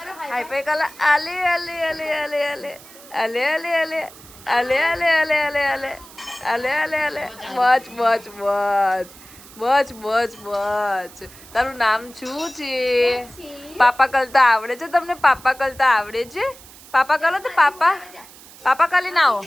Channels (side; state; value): right; noise; hiss, 20 dB below the sound